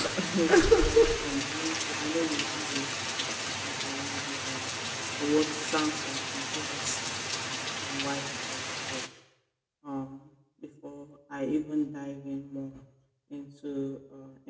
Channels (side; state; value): both; identical; correlation 1.00